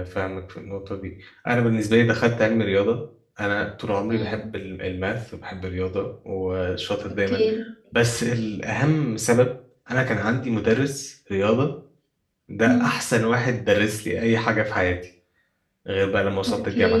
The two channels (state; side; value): identical; both; correlation 1.00